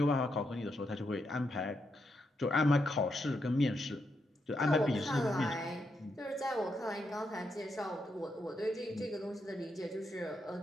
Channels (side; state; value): both; normal; correlation 0.82